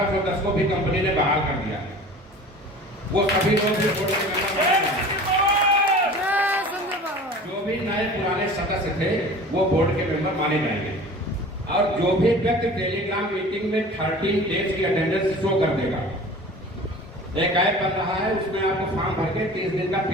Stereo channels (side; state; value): both; normal; correlation 0.41